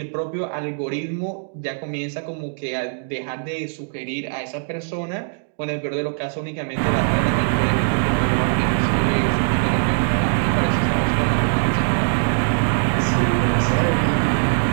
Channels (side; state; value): left; silent; digital silence